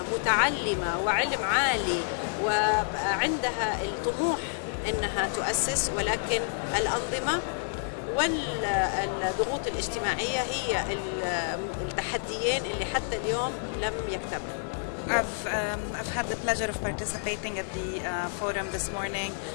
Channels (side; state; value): right; silent; digital silence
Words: متعلمة وعلم عالي وعندها الطموح أنها تؤسس، ولكن الأنظمة والضغوط الاجتماعية هي التحديين اللي حتى اليوم لم يكتملوا. I've had the pleasure of participating at the forum this morning,